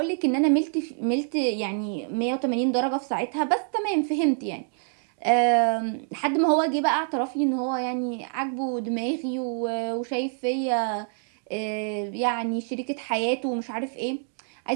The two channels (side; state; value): left; silent; 61 dB below the other